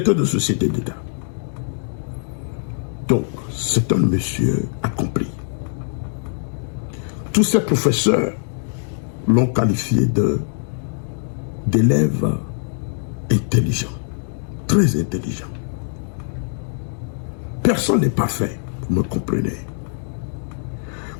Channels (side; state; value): right; silent; digital silence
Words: de société d'État. Donc, c'est un monsieur accompli. Tous ces professeurs l'ont qualifié d'élève intelligent, très intelligent. Personne n'est parfait, vous me comprenez.